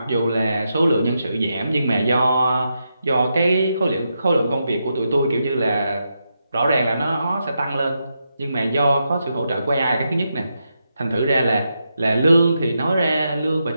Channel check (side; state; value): both; inverted; correlation -0.85